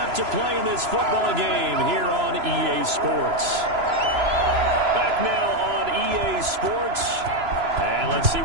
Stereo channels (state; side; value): late; left; 3.0 ms